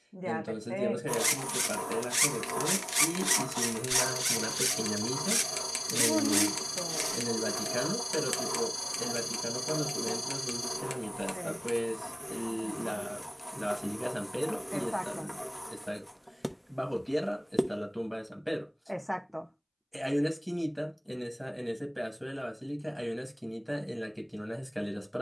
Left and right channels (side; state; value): both; identical; correlation 1.00